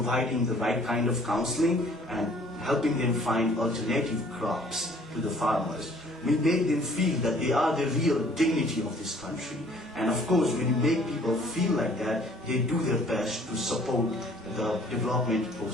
the right kind of counseling and helping them find alternative crops to the farmers. We made them feel that they are the real dignity of this country. And of course, when you make people feel like that, they do their best to support the development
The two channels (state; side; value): normal; both; correlation 0.56